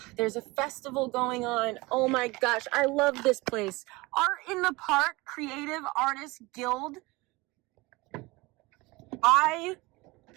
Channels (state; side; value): quieter; left; 22.9 dB